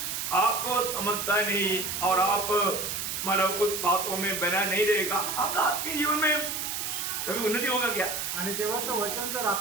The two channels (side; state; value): right; noise; hiss, 3 dB below the sound